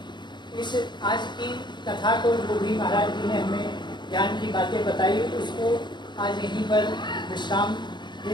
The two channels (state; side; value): late; right; 0.22 ms